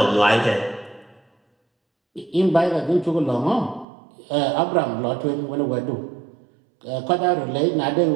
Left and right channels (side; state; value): left; drops out; at 3.9 s